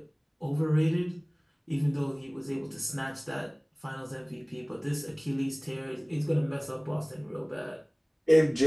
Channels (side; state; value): both; identical; correlation 1.00